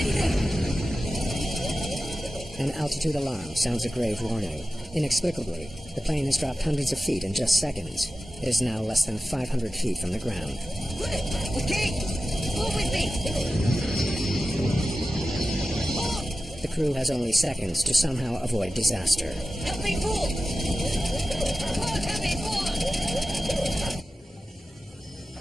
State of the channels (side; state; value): both; normal; correlation 0.94